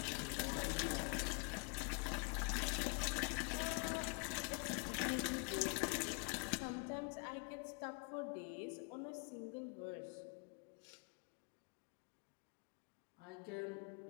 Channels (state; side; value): quieter; right; 35.0 dB